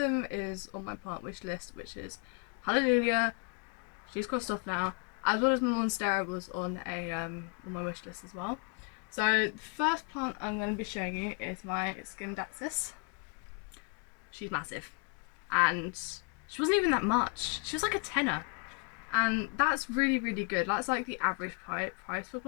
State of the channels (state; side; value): quieter; right; 34.2 dB